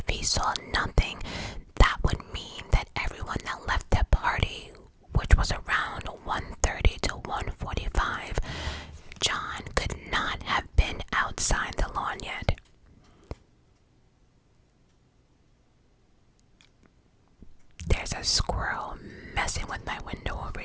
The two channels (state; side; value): identical; both; correlation 1.00